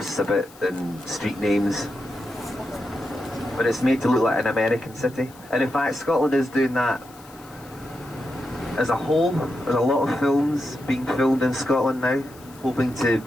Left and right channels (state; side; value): noise; left; hiss, 24 dB below the sound